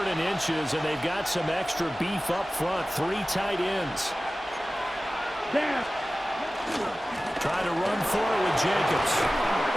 and inches, and they've got some extra beef up front. 3 tight ends. Trying to run for it with Jacobs.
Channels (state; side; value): normal; both; correlation 0.96